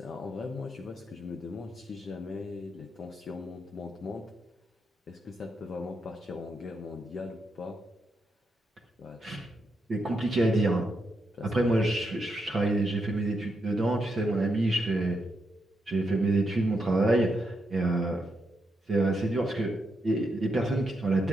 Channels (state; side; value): normal; both; correlation 0.82